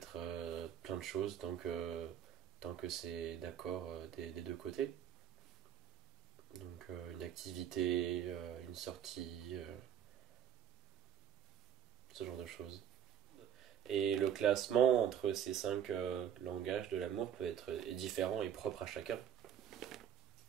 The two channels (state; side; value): quieter; left; 9.6 dB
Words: plein de choses tant que c'est d'accord des deux côtés. Donc une activité, une sortie, ce genre de choses. Et le classement entre ces cinq langages de l'amour peut être est différent et propre à chacun.